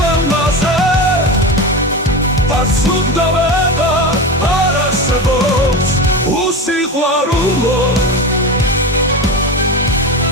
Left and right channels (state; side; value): normal; both; correlation 0.23